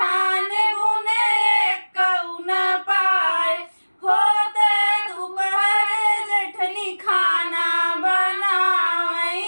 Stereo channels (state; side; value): inverted; both; correlation -1.00